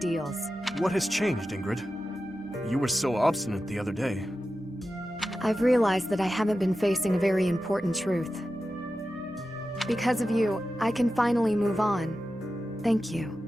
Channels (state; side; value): normal; both; correlation 0.92